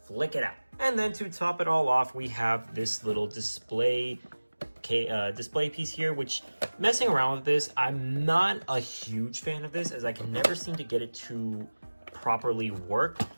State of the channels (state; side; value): inverted; both; correlation -1.00